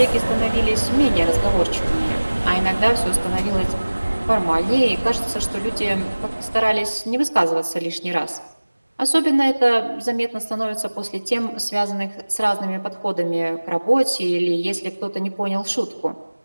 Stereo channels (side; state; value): both; inverted; correlation -1.00